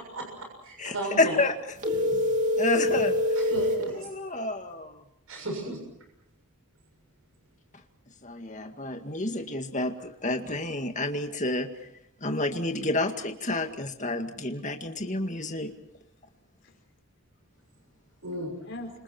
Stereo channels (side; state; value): both; normal; correlation 0.05